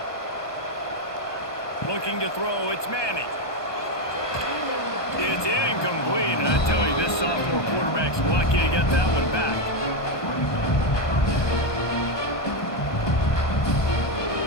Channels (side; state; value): right; late; 1.2 ms